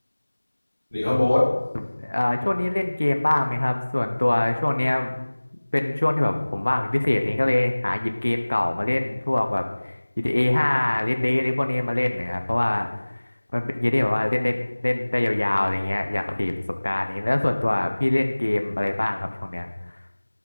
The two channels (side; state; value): both; inverted; correlation -1.00